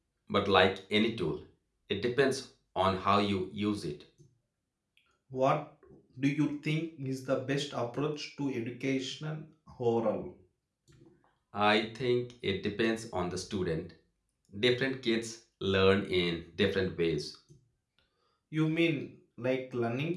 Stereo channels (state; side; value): identical; both; correlation 1.00